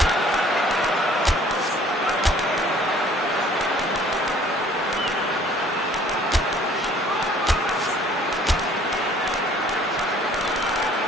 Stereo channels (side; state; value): both; normal; correlation 0.55